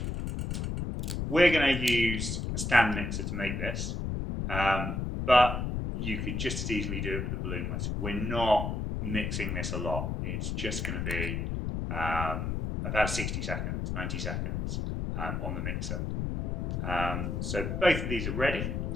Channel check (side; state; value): left; noise; rumble, 2 dB below the sound